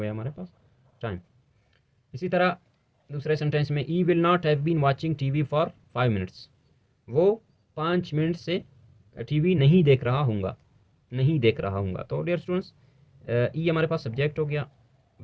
हमारे पास टाइम। इसी तरह दूसरे सेंटेंस में I will not have been watching TV for 5 minutes, वो 5 मिनट से टीवी नहीं देख रहा हूँगा, नहीं देख रहा हूँगा। तो डियर स्टूडेंट्स, ई हमारे पास सब्जेक्ट हो गया,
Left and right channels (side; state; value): both; identical; correlation 1.00